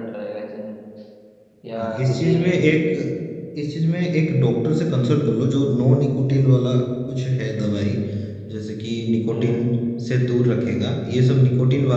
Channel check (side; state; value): both; identical; correlation 1.00